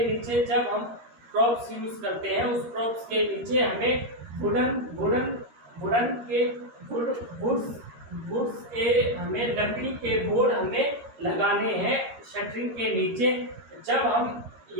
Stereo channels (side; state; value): left; late; 13 ms